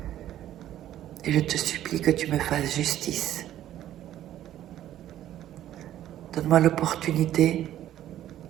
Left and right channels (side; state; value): left; quieter; 12.3 dB